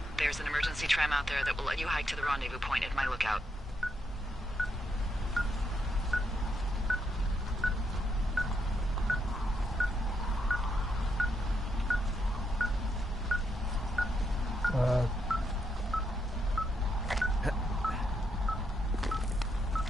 There's an emergency tram out there that will let you hike to the rendezvous point at my lookout.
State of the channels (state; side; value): normal; both; correlation 0.79